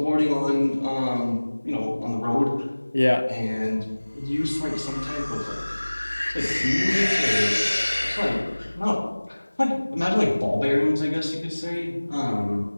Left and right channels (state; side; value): inverted; both; correlation -1.00